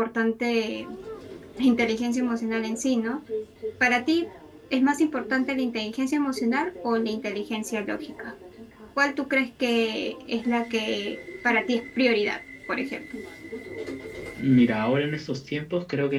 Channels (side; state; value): both; identical; correlation 1.00